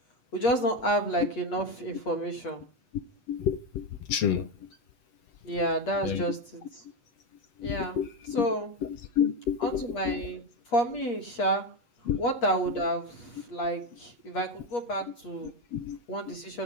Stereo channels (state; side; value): late; right; 8.5 ms